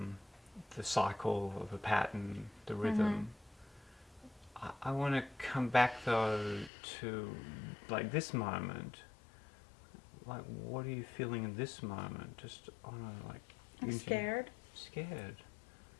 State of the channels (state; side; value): drops out; right; at 6.7 s